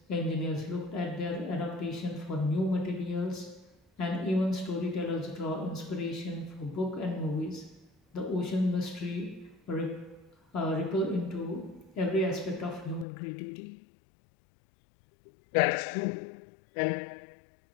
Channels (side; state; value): right; drops out; at 13.1 s